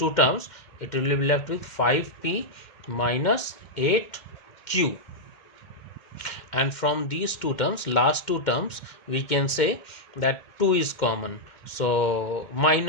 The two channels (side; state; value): right; late; 2.2 ms